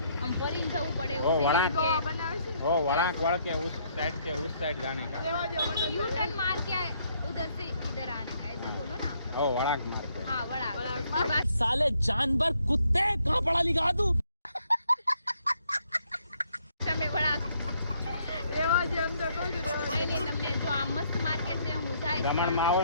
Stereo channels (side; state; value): both; inverted; correlation -0.69